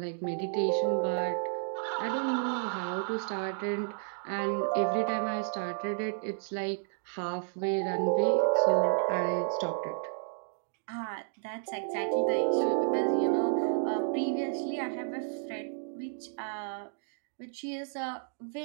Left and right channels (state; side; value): silent; left; digital silence